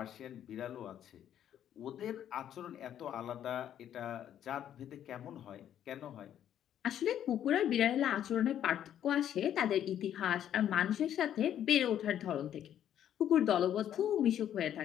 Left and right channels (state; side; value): quieter; right; 10.4 dB